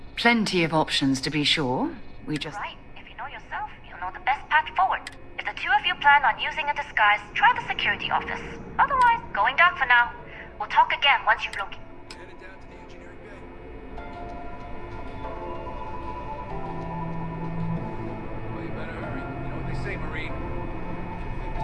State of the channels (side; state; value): both; identical; correlation 1.00